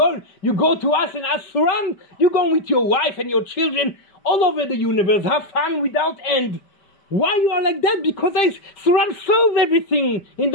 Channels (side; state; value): right; late; 5.1 ms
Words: to us and ask Suran, you go with your wife and your children all over the universe. Have fun without end. Why you are like that? Because Suran solved everything in